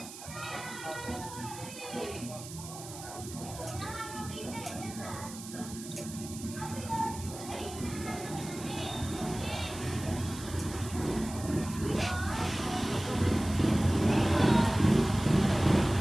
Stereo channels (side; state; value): right; noise; hiss, 13 dB below the sound